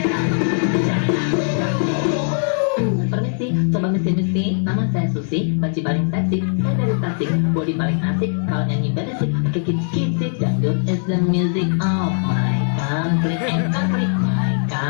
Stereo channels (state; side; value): silent; right; digital silence